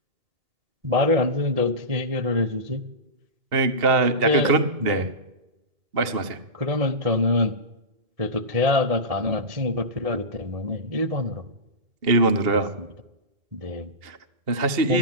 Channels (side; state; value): left; late; 2.7 ms